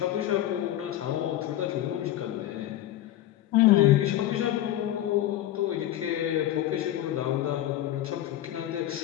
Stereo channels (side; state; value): right; quieter; 13.1 dB